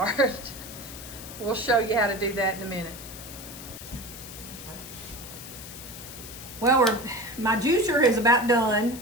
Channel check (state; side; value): noise; left; hiss, 13 dB below the sound